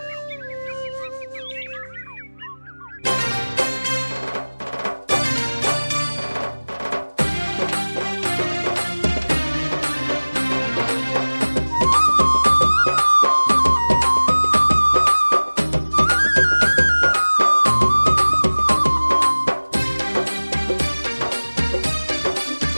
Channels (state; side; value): inverted; both; correlation -1.00